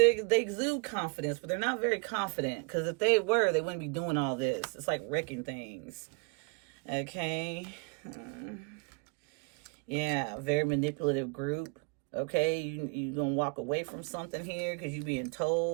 exude confidence, but they're not very confident. Because if they were, they wouldn't be doing all this. It's like wrecking things. Okay. Yeah, very manipulative group. Okay, you going to walk away from something here because you're being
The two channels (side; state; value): left; quieter; 33.8 dB